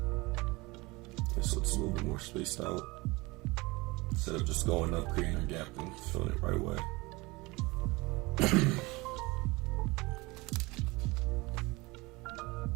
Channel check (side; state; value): left; quieter; 23.5 dB